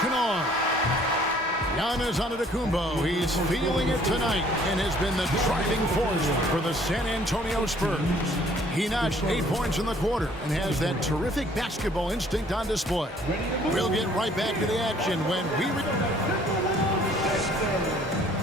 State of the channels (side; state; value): both; normal; correlation 0.58